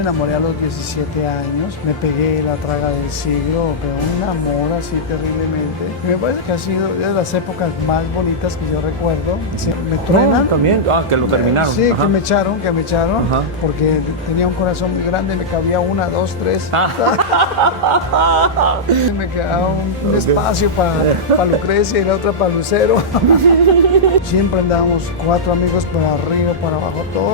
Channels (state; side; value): normal; both; correlation -0.10